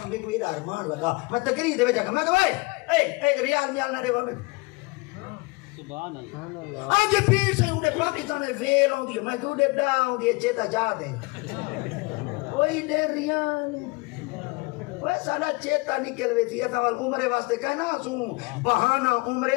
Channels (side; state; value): right; quieter; 26.6 dB